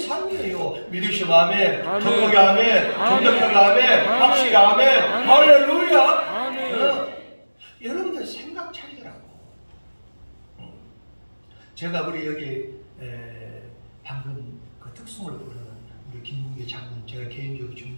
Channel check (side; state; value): both; inverted; correlation -1.00